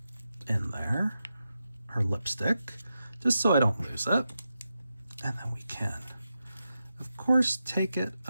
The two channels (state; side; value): inverted; both; correlation -0.89